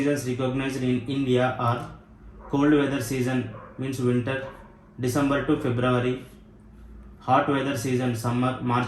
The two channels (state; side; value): identical; both; correlation 1.00